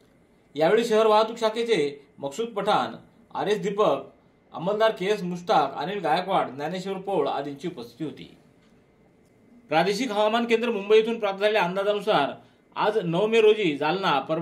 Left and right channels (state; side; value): identical; both; correlation 1.00